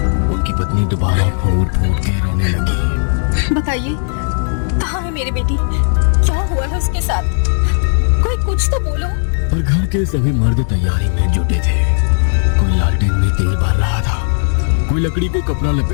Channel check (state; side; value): silent; right; digital silence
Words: उनकी पत्नी दोबारा फूट फूट के रोने लगी। बताइए, कहाँ है मेरी बेटी? क्या हुआ है उसके साथ? कोई कुछ तो बोलो। पर घर के सभी मर्द तैयारी में जुटे थे। कोई लालटेन में तेल भर रहा था, कोई लकड़ी को कपड़ा